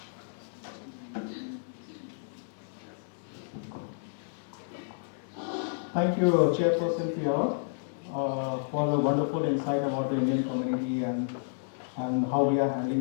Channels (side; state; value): right; silent; digital silence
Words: Thank you, Chairperson FIAWA, for the wonderful insight about the Indian community and how we are handling